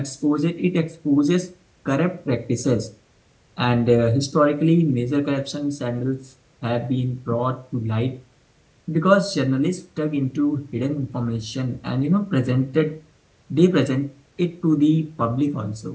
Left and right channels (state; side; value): identical; both; correlation 1.00